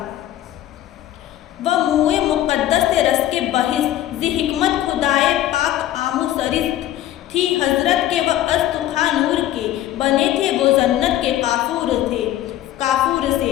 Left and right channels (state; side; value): quieter; right; 13.2 dB